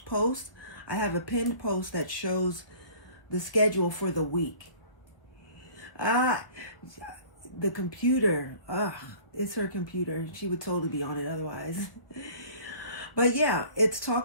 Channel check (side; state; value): right; late; 1.0 ms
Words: post, I have a pinned post that shows the schedule for the week. The computer, it's her computer. She would totally be on it otherwise. But yeah, it's